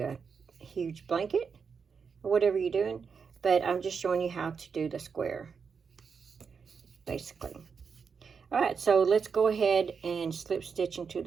a huge blanket or whatever you're doing. But I'm just showing you how to do the square, basically. All right, so let's go ahead and slip stitch into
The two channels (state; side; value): quieter; left; 5.9 dB